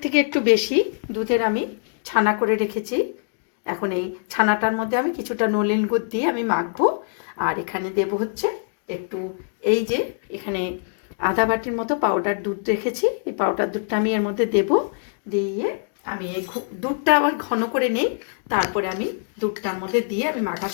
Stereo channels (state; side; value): silent; right; digital silence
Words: থেকে একটু বেশি দুধের আমি ছানা করে রেখেছি। এখন এই ছানাটার মধ্যে আমি কিছুটা নলেন গুড় দিয়ে আমি মাখবো। আর এখানে দেব হচ্ছে একটু, এই যে এখানে আধা বাটির মতো পাউডার দুধ রেখেছি, এই পাউডার দুধটা আমি এর মধ্যে দেব। দিয়ে আমি এই দুধটা আবার ঘন করে নিই, তারপরে আমি দুধটার মধ্যে দিয়ে আমি মাখা